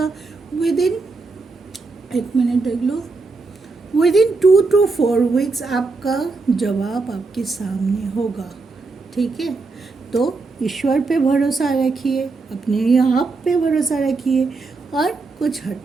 विद इन, एक मिनट देख लो, विद इन 2 to 4 weeks आपका जवाब आपके सामने होगा, ठीक है। तो ईश्वर पे भरोसा रखिए, अपने आप पे भरोसा रखिए, और कुछ हद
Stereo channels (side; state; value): left; quieter; 3.9 dB